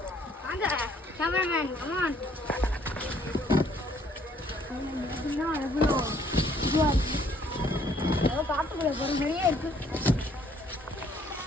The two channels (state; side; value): normal; both; correlation 0.63